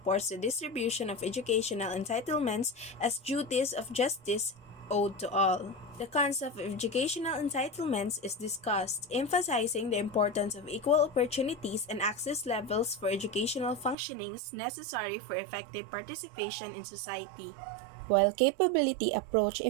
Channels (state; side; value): drops out; left; at 14.0 s